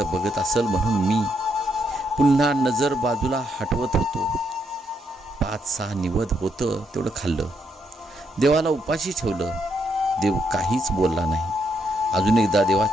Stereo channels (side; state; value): both; normal; correlation 0.77